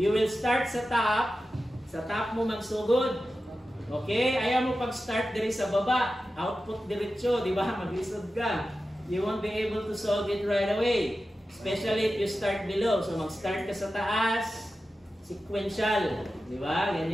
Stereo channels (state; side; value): normal; both; correlation 0.93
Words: will start sa top. Sa top mo magsugod. Okay? Ayaw mo pag-start diri sa baba. Output diretso, di ba? Maglisod ka. You won't be able to solve it right away. Especially if you start below. So, mag-start ka sa taas. Sequential. Di ba?